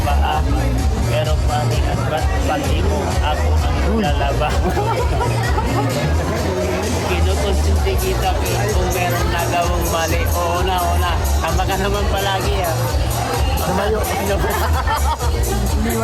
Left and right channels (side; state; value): both; identical; correlation 1.00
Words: paa. Pero pati at ba't pati mo, ako ang lalaba. Kinukonsinti kita kung meron nagawang mali. Oo na. Tama ka naman palagi Tumayo.